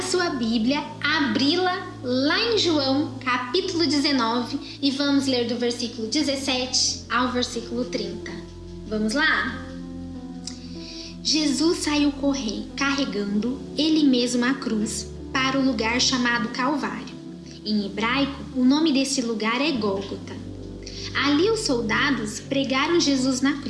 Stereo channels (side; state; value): both; identical; correlation 1.00